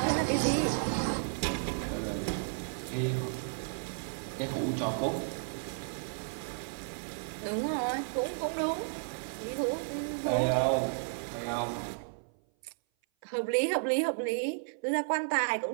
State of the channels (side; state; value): left; silent; 56 dB below the other